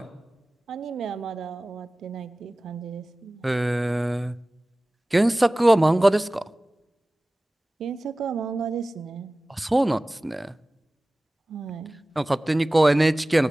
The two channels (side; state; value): both; normal; correlation 0.98